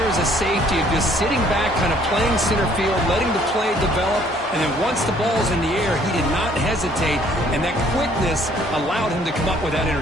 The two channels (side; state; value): both; normal; correlation 0.61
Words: as a safety of just sitting back, kind of playing center field, letting the play develop, and then once the ball's in the air, he did not hesitate, and that quickness allowed him to come up with that